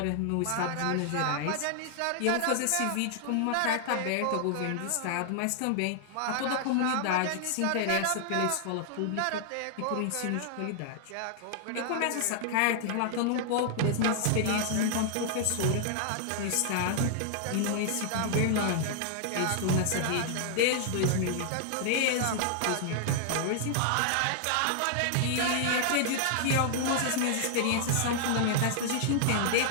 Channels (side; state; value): both; different; correlation -0.01